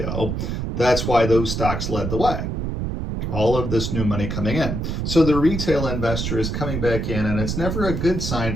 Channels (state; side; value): noise; right; rumble, 2 dB below the sound